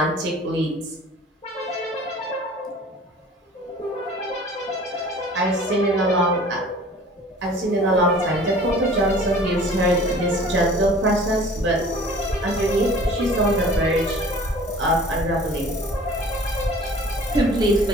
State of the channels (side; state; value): both; normal; correlation 0.47